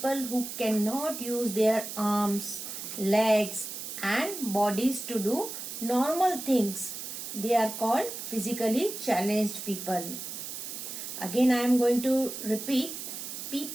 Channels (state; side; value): noise; right; hiss, 8 dB below the sound